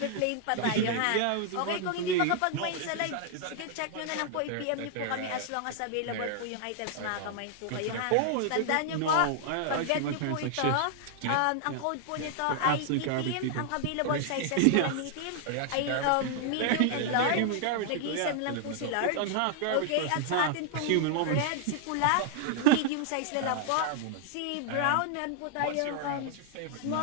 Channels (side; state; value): both; different; correlation 0.00